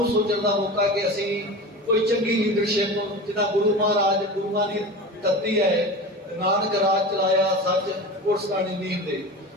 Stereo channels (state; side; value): normal; both; correlation 0.30